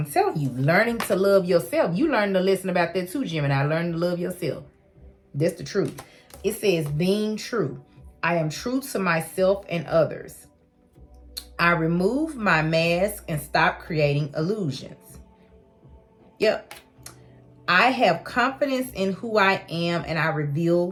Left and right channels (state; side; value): identical; both; correlation 1.00